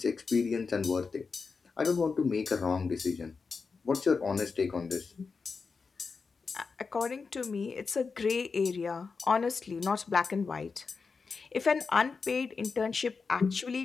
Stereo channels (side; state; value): right; quieter; 4.9 dB